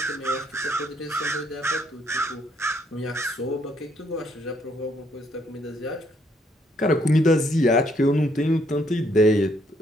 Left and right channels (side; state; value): both; normal; correlation 0.70